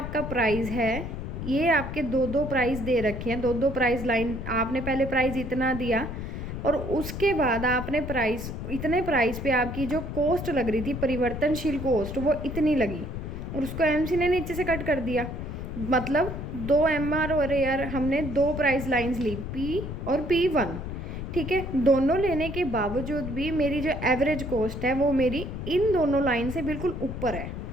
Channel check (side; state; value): left; noise; rumble, 6 dB below the sound